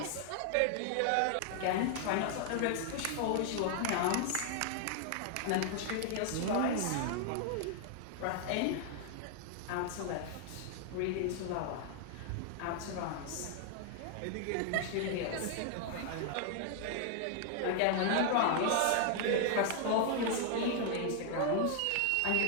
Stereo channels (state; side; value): different; both; correlation 0.00